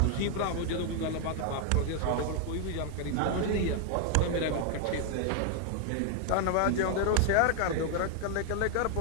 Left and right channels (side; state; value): both; different; correlation 0.00